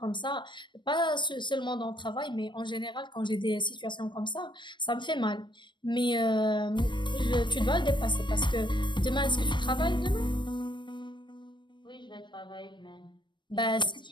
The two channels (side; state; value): right; late; 0.22 ms